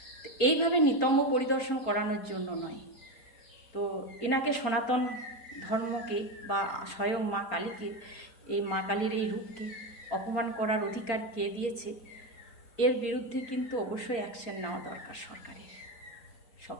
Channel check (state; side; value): late; right; 4.3 ms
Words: তো এইভাবে নিতম্ব পরিদর্শন করানোর জন্য নয়। তো এনাকে সনাতন ধর্মকে বা স্বয়ং মা কালীকে, এই মা কালীর এই রূপকে অপমান করার অধিকার কে দিয়েছে? এর বিরুদ্ধে কিন্তু অবশ্যই অ্যাকশন নেওয়া দরকার সরকারের।